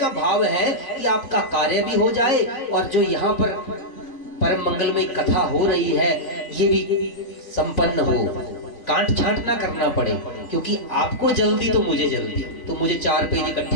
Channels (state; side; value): late; right; 3.5 ms